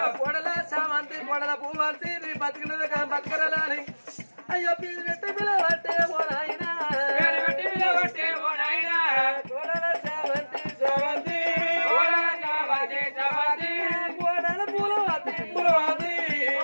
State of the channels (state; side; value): inverted; both; correlation -1.00